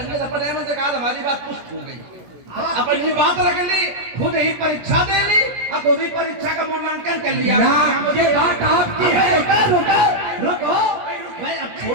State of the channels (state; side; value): late; left; 17 ms